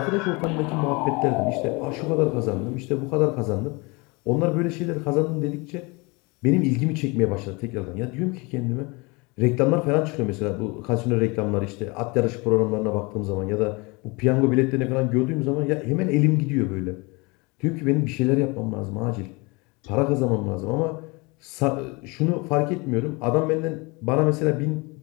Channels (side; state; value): right; quieter; 27.2 dB